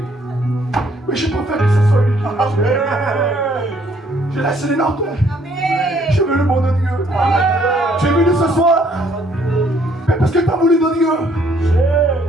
Mais je préfère que ce soit lui qui je laisse les notes. Je veux le monde de Dieu. Tu es venu ce soir. Mais parce que tu as voulu de Dieu.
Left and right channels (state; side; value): normal; both; correlation 0.65